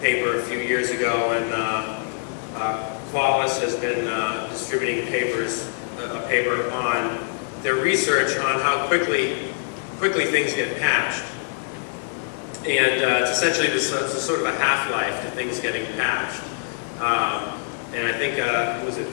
paper a few years ago, and Qualys has been distributing a paper on their research on how quickly things get patched. And it's essentially it's a sort of a half-life to things getting patched. And I think, was it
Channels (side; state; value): right; silent; 63 dB below the other